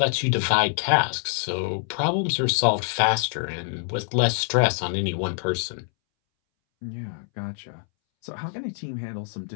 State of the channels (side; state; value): right; silent; 62 dB below the other